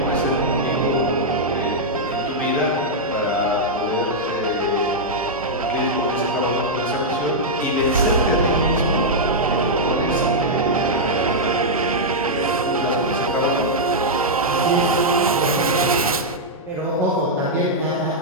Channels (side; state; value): both; normal; correlation -0.06